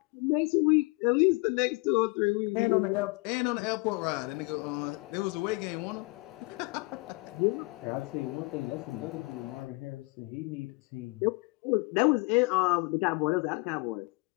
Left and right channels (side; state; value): right; quieter; 27.3 dB